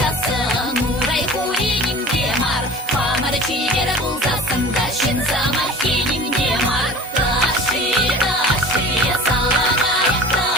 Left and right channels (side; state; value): both; normal; correlation 0.40